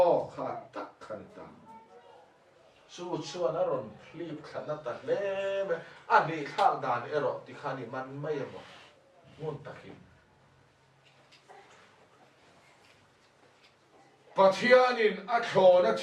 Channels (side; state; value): both; identical; correlation 1.00